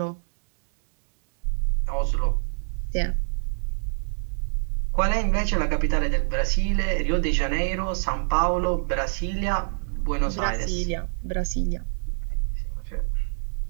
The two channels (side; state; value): left; silent; digital silence